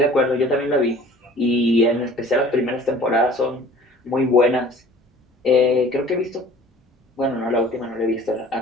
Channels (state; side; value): normal; both; correlation 0.48